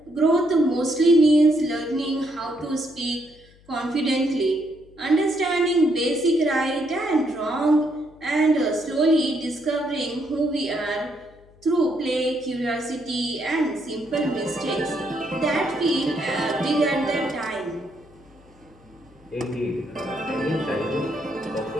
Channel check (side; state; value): left; noise; hum, 27 dB below the sound